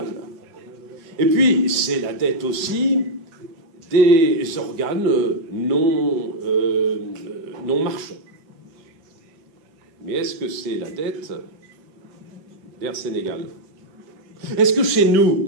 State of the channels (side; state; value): left; late; 6.1 ms